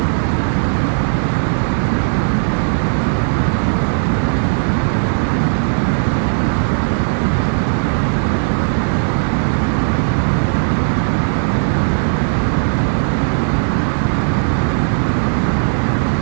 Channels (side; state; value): left; silent; 69 dB below the other